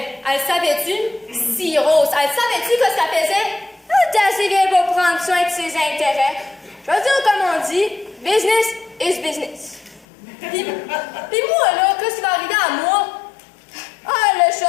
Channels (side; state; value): right; drops out; at 10.1 s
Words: elle savait-tu? Si Rose, elle savait-tu que ça faisait? Ah, t'es assez vieille pour prendre soin de ses intérêts. Je veux dire, comme on dit, business is business. Puis moi, là, qu'est-ce qui va arriver à moi? Ah, le